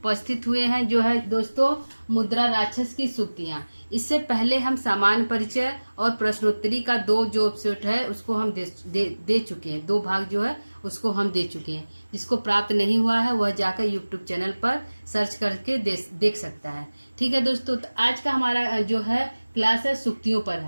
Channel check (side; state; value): both; inverted; correlation -1.00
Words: हुए हैं जो है दोस्तों मुद्रा राक्षस की सूक्तियां। इससे पहले हम सामान्य परिचय और प्रश्नोत्तरी का जो एपिसोड है उसको हम दे चुके हैं। 2 भाग जो है उसको हम दे चुके हैं। जिसको प्राप्त नहीं हुआ है वह जाकर यूट्यूब चैनल पर सर्च करके देख सकता है। ठीक है दोस्तों, तो आज का हमारा जो है क्लास है सूक्तियों पर